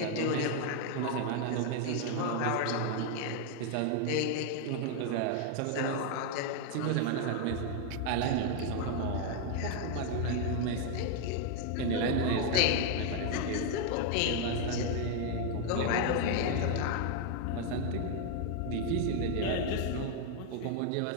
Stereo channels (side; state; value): both; different; correlation 0.00